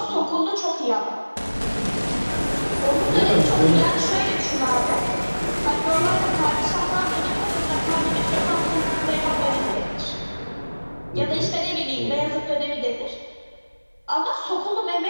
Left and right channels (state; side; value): inverted; both; correlation -1.00